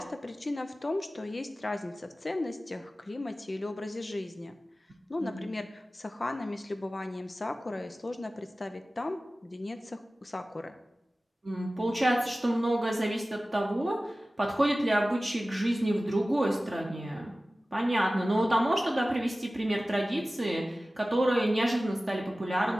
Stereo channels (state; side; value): normal; both; correlation 0.96